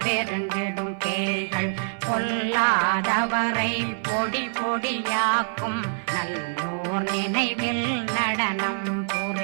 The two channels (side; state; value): left; silent; 57 dB below the other